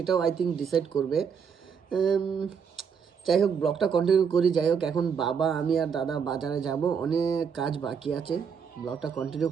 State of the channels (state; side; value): quieter; left; 6.7 dB